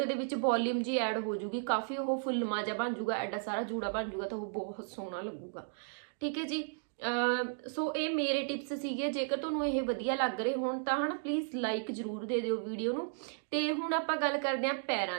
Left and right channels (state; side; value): silent; left; digital silence